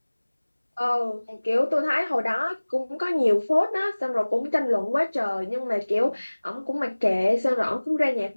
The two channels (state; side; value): inverted; both; correlation -1.00